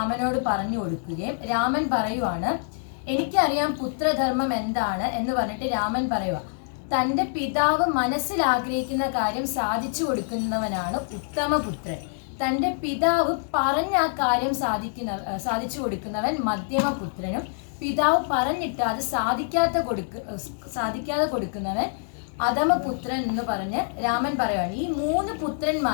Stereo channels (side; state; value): right; silent; 61 dB below the other